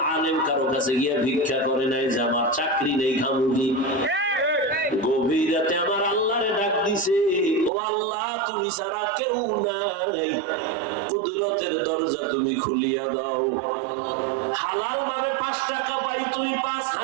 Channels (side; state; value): left; drops out; at 7.7 s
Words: আলেম কারো কাছে গিয়ে ভিক্ষা করে নাই যে আমার চাকরি নেই, খামুকি। গভীর রাতে আমার আল্লাহরে ডাক দিছে, ও আল্লাহ তুমি ছাড়া কেউ নাই, কুদরতের দরজা তুমি খুলিয়া দাও। হালাল ভাবে 5 টাকা পাই, তুমি